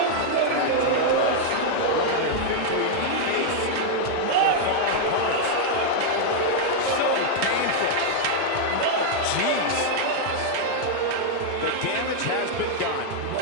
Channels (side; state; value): both; different; correlation 0.00